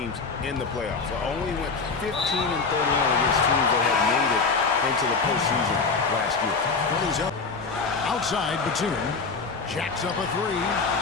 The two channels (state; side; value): quieter; right; 4.6 dB